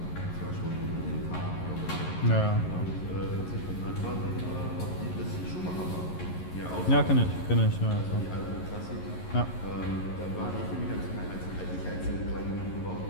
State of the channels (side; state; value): right; late; 11 ms